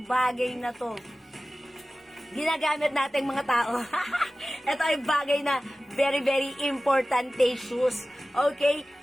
bagay na to. Ginagamit nating mga tao. Ito ay bagay na very importante shoes. Okay,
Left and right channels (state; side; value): normal; both; correlation 0.96